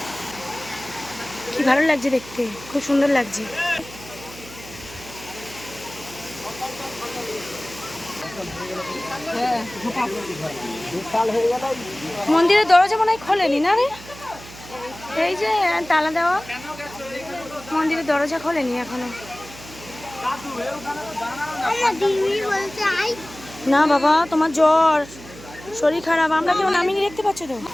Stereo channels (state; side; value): noise; right; hum, 17 dB below the sound